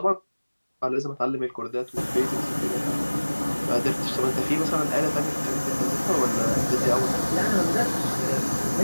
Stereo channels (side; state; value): both; inverted; correlation -1.00